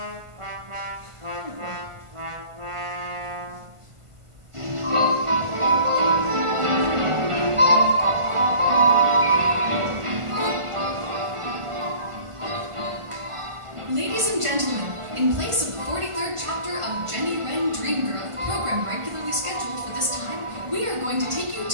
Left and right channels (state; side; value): late; left; 1.5 ms